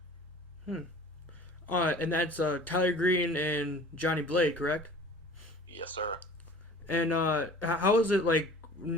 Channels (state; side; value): normal; both; correlation 0.45